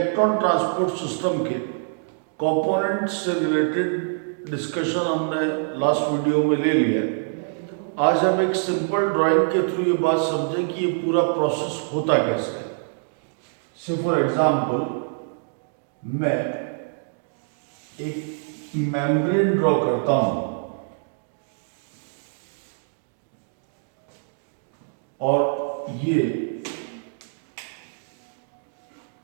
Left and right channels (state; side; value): silent; left; digital silence